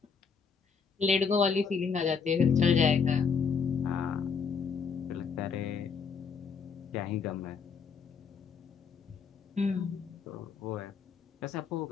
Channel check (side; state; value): right; quieter; 5.9 dB